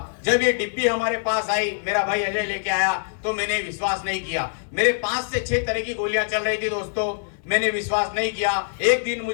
जब ये डिब्बी हमारे पास आई, मेरा भाई अजय लेके आया, तो मैंने विश्वास नहीं किया। मेरे 5 से 6 तरह की गोलियां चल रही थी। दोस्तों, मैंने विश्वास नहीं किया। एक दिन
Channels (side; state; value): right; silent; 63 dB below the other